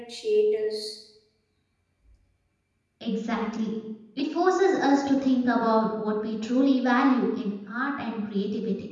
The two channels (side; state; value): both; identical; correlation 1.00